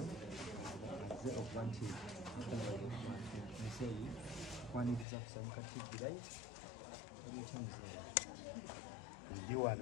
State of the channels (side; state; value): right; drops out; at 5.1 s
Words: azze okuba nti museyi kwaniriza kusanyuka TV right ndi